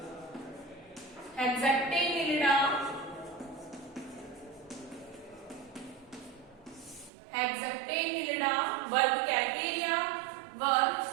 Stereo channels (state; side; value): drops out; left; at 7.1 s